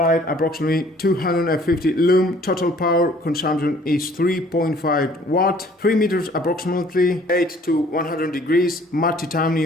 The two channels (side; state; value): both; normal; correlation 0.56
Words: approximately 250 lumen, total power consumption is 3.5 watt, 3 meters approximately, 8 to 100 degrees, matte